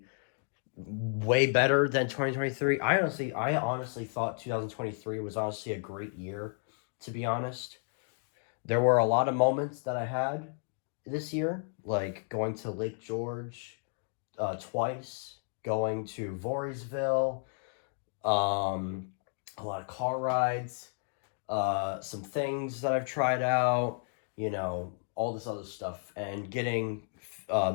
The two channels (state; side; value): silent; right; 56 dB below the other